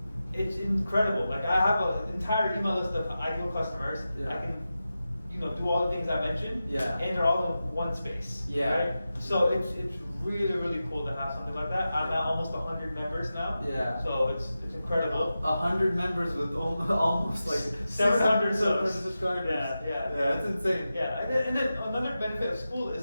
it's incredible. Like I have an entire email list of ideal customers. Yeah. I can do all the things I mentioned, Yeah. and they're all in one space. Yeah. Right? So it's really, really cool to have something like that. I'm at almost 100 members now. Yeah. So it's incredible. 100 members with almost like 700 subscribers. Yeah, yeah. Yeah, it's insane. Yeah, and then another benefit of school is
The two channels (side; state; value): both; inverted; correlation -0.92